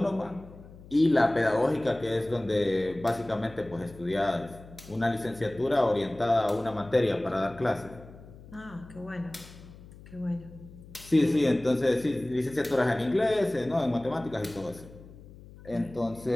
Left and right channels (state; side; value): noise; left; hum, 19 dB below the sound